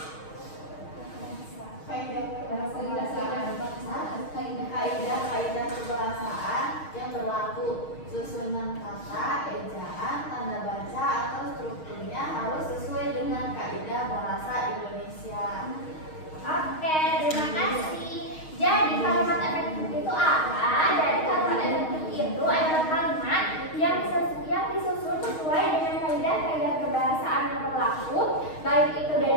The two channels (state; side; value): late; right; 6.4 ms